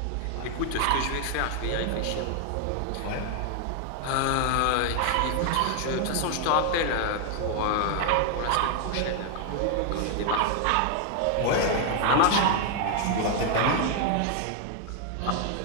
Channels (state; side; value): different; both; correlation 0.00